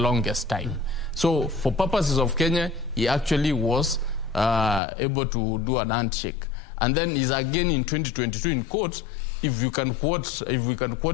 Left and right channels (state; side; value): drops out; right; at 4.8 s